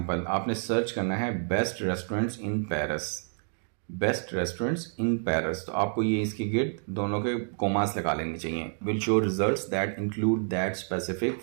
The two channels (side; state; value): left; silent; 59 dB below the other